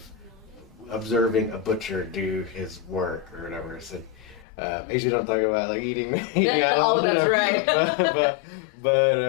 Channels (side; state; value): right; drops out; at 4.5 s